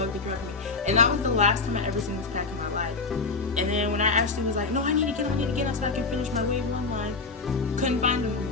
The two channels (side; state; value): right; quieter; 4.1 dB